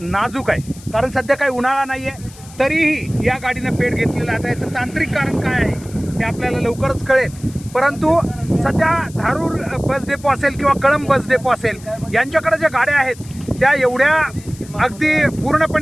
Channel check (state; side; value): noise; left; hiss, 21 dB below the sound